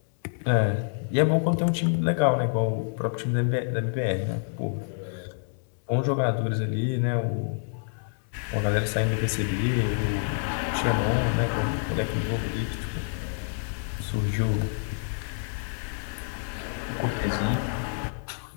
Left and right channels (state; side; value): silent; right; 60 dB below the other